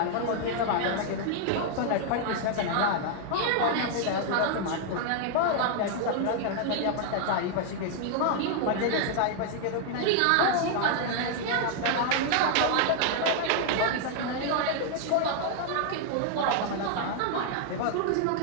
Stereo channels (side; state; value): both; different; correlation 0.00